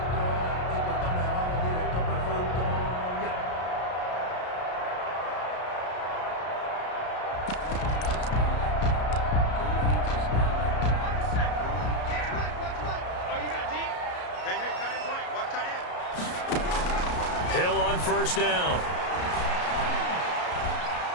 Hill on first down.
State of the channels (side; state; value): right; late; 33 ms